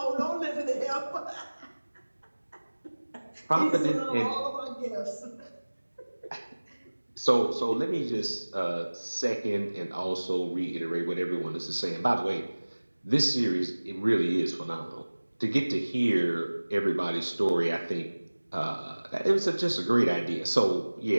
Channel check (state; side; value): inverted; both; correlation -1.00